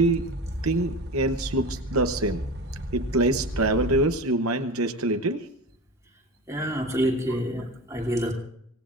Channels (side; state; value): both; normal; correlation 0.30